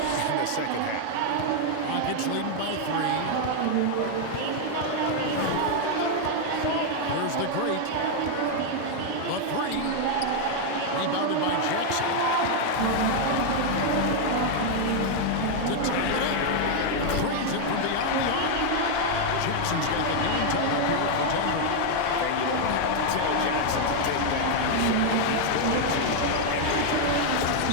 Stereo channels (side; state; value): both; different; correlation 0.00